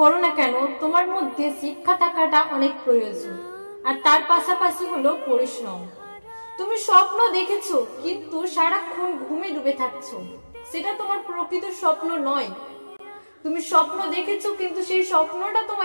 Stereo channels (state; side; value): inverted; both; correlation -1.00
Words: না কেন, তোমার মধ্যে শিক্ষা থাকাটা অনেক প্রয়োজন, আর তার পাশাপাশি হলো পরিশ্রম। তুমি স্বপ্ন দেখেছো কিন্তু সারাক্ষণ ঘুমে ডুবে থাকছো, সেটা তোমার প্রকৃত স্বপ্ন নয়। তুমি স্বপ্ন দেখেছো কিন্তু সেই স্বপ্নটা